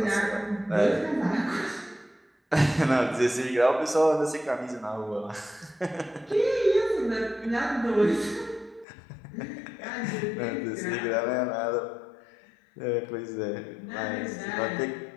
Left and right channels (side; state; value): right; drops out; at 8.8 s